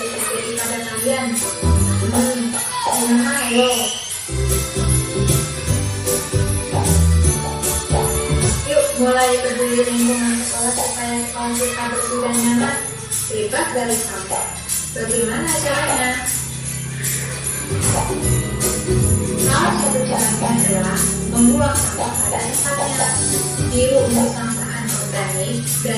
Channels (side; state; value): both; identical; correlation 1.00